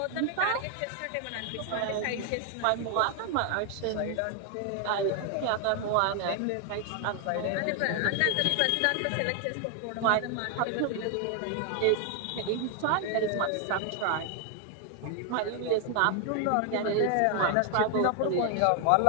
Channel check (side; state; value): both; different; correlation 0.00